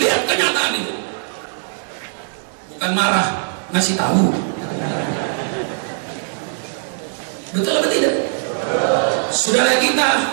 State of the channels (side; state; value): left; silent; digital silence